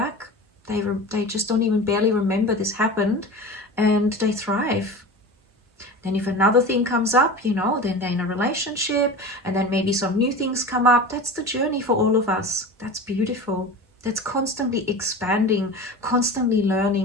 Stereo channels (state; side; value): normal; both; correlation 0.32